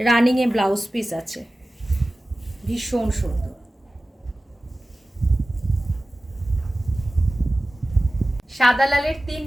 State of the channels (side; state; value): both; normal; correlation 0.96